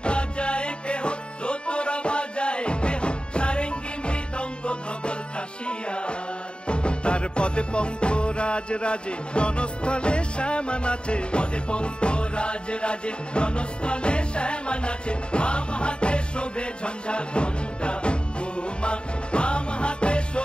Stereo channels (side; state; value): right; late; 0.052 ms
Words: বাজায় কেহ, দোতরা বাজায় কেহ, সারেঙ্গি মৃদঙ্গ ধবল কাশিয়ার। তার পদে পঙ্ক রাজ রাজে, রণস্থলে শ্যামা নাচে। পদে পঙ্ক রাজ রাজে, রণস্থলে শ্যামা নাচে। বাম হাতে শোভে ঝঞ্ঝা ঘণ্টা গোমা, বাম হাতে